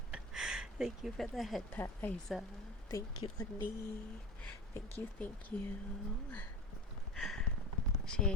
Thank you for the head pat, Isa. Thank you, Annie. Thank you. She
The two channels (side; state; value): both; normal; correlation 0.29